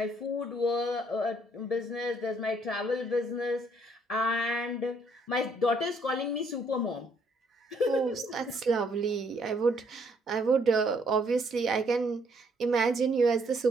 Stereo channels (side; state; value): both; normal; correlation 0.67